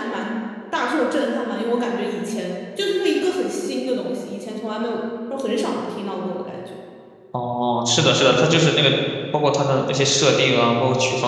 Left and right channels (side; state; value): both; identical; correlation 1.00